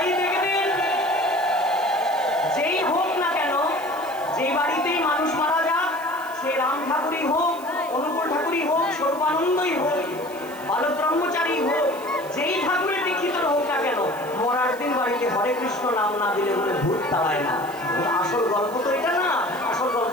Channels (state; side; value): noise; right; hiss, 20 dB below the sound